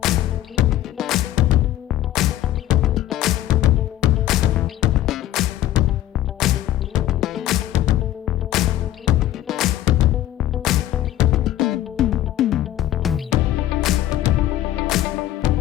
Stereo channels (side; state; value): right; quieter; 13.5 dB